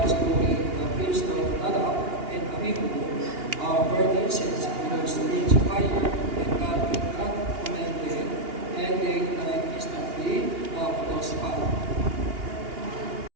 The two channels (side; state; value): left; late; 2.8 ms